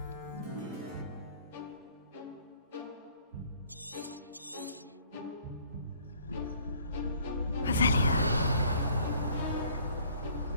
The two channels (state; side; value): inverted; both; correlation -0.57